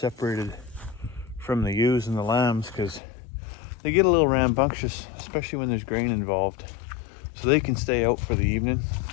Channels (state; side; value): drops out; right; at 3.0 s